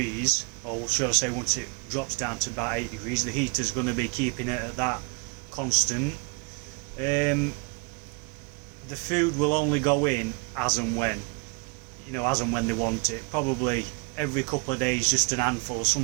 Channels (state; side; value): quieter; left; 33.1 dB